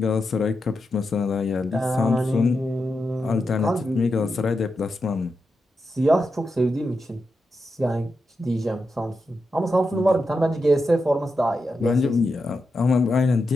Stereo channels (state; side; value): normal; both; correlation 0.87